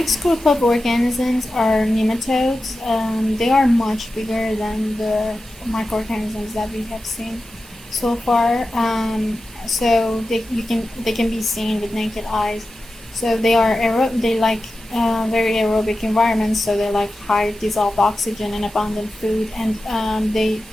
group of organisms are nematodes. They are much bigger than the microorganisms that we have seen so far. So they can be seen with naked eyes. So they are very aerobic environments. So they like high dissolved oxygen and abundant food, and they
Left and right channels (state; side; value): normal; both; correlation 0.93